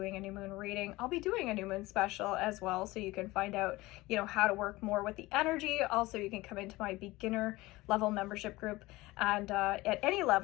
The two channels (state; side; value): quieter; right; 19.9 dB